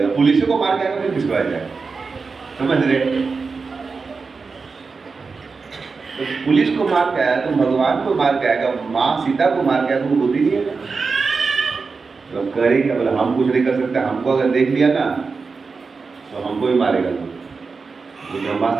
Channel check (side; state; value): left; quieter; 4.6 dB